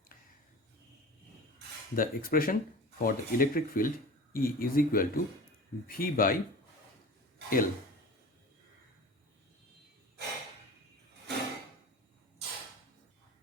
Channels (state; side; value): normal; both; correlation 0.36